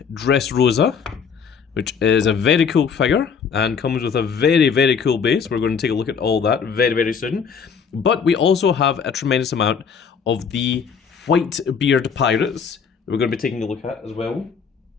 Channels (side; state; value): right; quieter; 6.4 dB